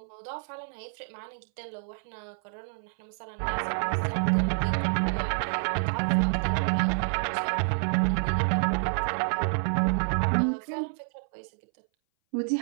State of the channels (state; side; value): silent; left; 59 dB below the other